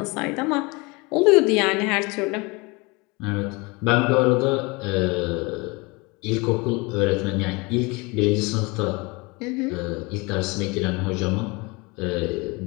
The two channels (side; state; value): right; quieter; 26.4 dB